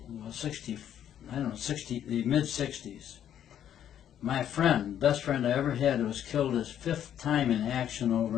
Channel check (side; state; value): right; quieter; 10.2 dB